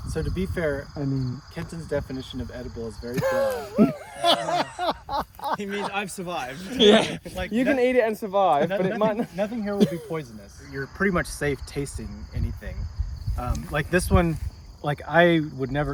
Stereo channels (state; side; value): identical; both; correlation 1.00